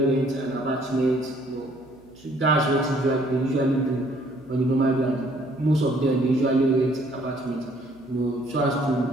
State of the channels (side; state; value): right; noise; hum, 27 dB below the sound